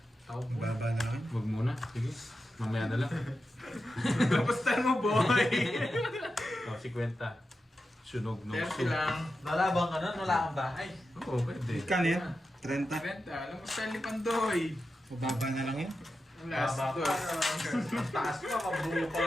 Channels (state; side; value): normal; both; correlation 0.90